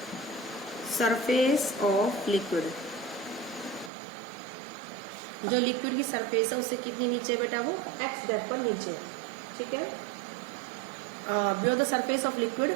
surface of liquid, जो लिक्विड की सरफेस है उससे कितनी नीचे है बेटा, वो x डेप्थ पर नीचे है, ठीक है। Below the surface of liquid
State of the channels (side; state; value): left; drops out; at 3.9 s